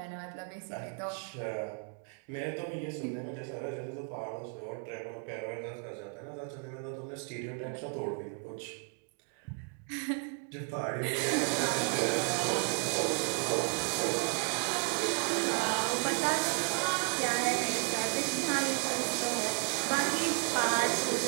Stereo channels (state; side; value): quieter; left; 36.3 dB